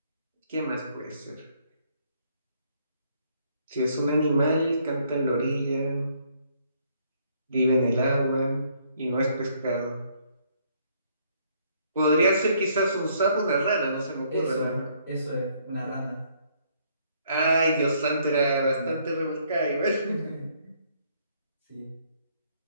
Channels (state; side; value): inverted; both; correlation -0.67